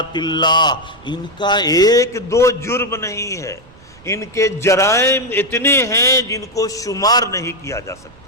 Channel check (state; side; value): noise; right; rumble, 25 dB below the sound